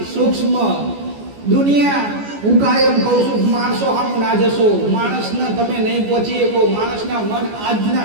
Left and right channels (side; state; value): left; late; 14 ms